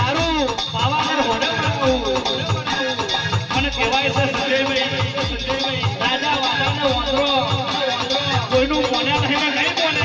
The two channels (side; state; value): both; identical; correlation 1.00